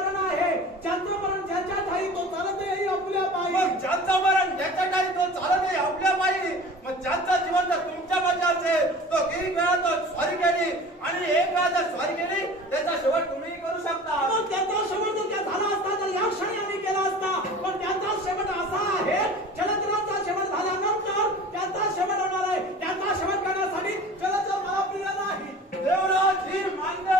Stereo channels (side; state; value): both; normal; correlation 0.40